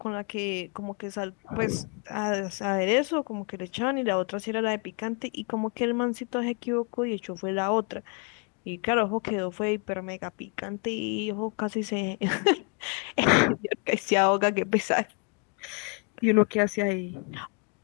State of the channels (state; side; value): quieter; right; 34.4 dB